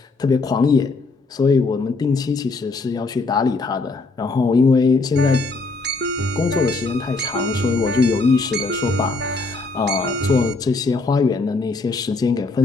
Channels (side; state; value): right; quieter; 3.6 dB